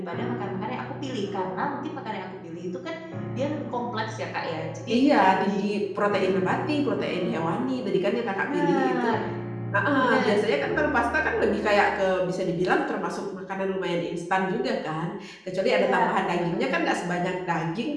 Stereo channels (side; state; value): both; identical; correlation 1.00